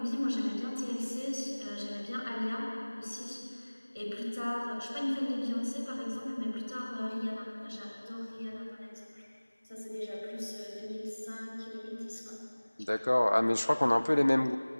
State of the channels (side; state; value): both; inverted; correlation -1.00